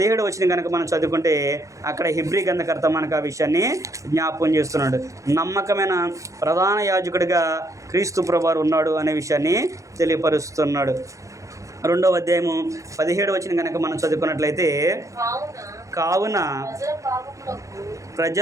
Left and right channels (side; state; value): left; late; 0.15 ms